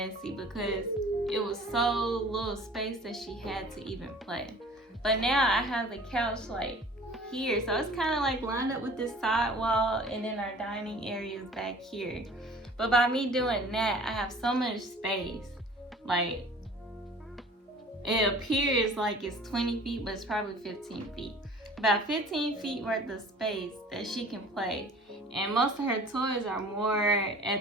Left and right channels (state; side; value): normal; both; correlation 0.46